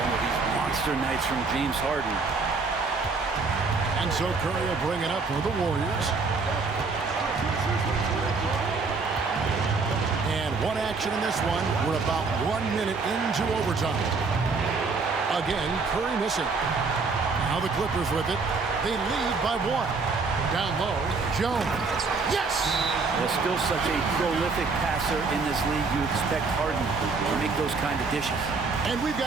of these monster nights from James Harden. And so Curry will bring it up for the Warriors. And one action in this one. We're about 1 minute into overtime. Again, Curry missing. Now the Clippers with it. They lead by one. Down low, Jones. Yes! There's still such a prolific passer in this league. You expect Harden to make those kind of dishes. And we've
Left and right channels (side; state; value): left; quieter; 4.3 dB